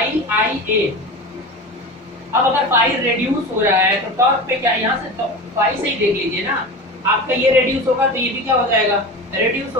आई ए। अब अगर पाई रेड्यूस हो रहा है तो टॉर्क पे क्या, यहाँ से पाई से ही देख लीजिए ना, आपका ये रेड्यूस होगा तो ये भी क्या हो जाएगा, रेड्यूस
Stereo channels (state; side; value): normal; both; correlation 0.29